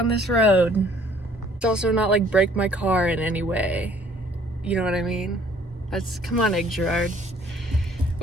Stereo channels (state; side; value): normal; both; correlation 0.58